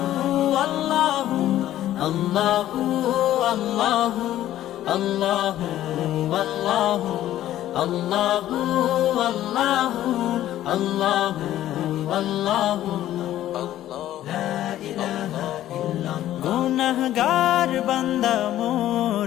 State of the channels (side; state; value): right; quieter; 13.1 dB